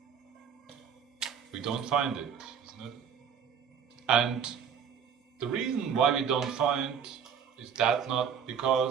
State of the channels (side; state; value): left; quieter; 7.4 dB